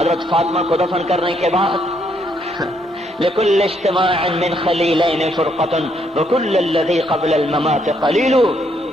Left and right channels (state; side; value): normal; both; correlation 0.72